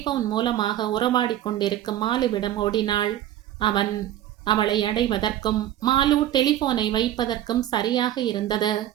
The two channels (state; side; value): quieter; left; 12.5 dB